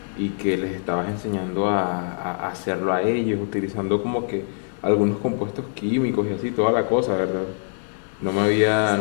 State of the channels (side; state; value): right; silent; digital silence